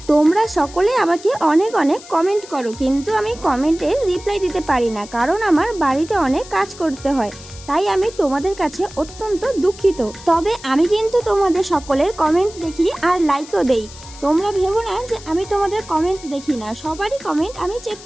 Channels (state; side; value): noise; left; hiss, 18 dB below the sound